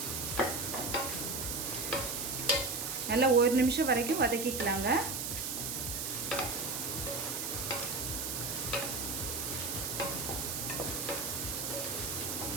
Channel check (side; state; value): right; noise; hiss, 3 dB below the sound